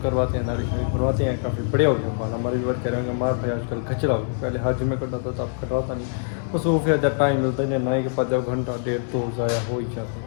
करवाते हैं, दाढ़ी शाड़ी करवाते हैं। काफ़ी बड़े हो गए बाल हमारे भी वर्क करेंगे। मार भाई आजकल खचरा हो गया, पहले हर जुम्मे कटाता था, अब कटवाता नहीं। मसरूफ है, जब टाइम मिलता नहीं, नाई के पास जब घंटा डेढ़ तो ज़ाया हो ही जाता है,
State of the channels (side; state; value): right; silent; 63 dB below the other